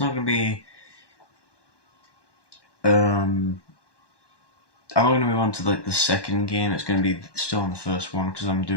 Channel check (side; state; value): right; late; 1.2 ms